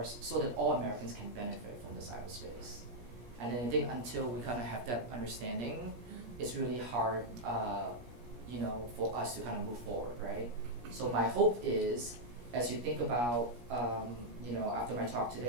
so that all Americans can benefit from the cyberspace. And then I think until we kind of have that understanding, it's really hard, for us to kind of move forward, right? So my hope is, as you think about, after my talk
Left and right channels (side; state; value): left; late; 17 ms